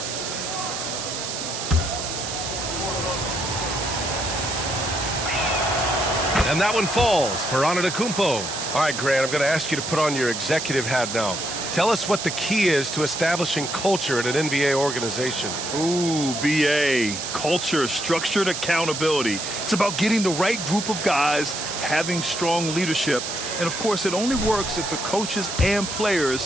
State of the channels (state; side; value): noise; right; hiss, 5 dB below the sound